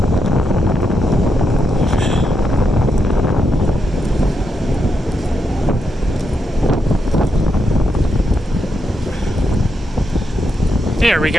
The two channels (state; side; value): normal; both; correlation 0.83